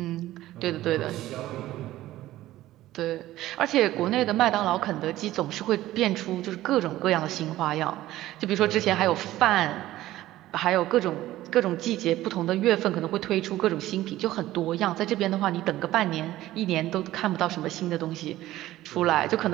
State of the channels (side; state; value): left; quieter; 15.3 dB